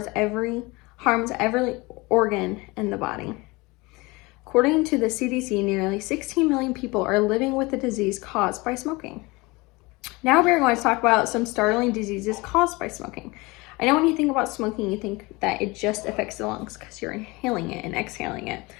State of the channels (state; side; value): quieter; right; 24.0 dB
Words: every organ in the body. According to the CDC, nearly 16 million people are living with the disease caused by smoking. Now we're going to talk about some startling diseases caused by smoking. I know when you think about smoking, you think that it just affects the lungs because you're inhaling it and exhaling it,